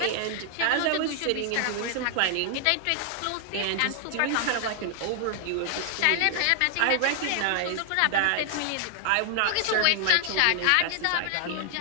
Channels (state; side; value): different; both; correlation 0.00